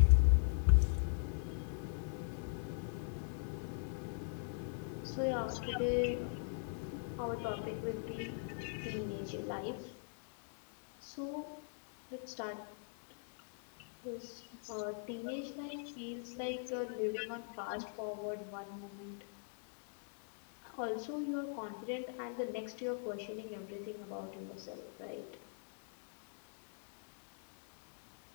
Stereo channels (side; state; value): right; silent; 51 dB below the other